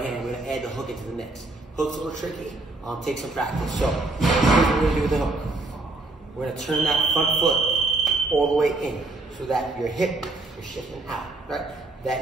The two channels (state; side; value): quieter; left; 3.0 dB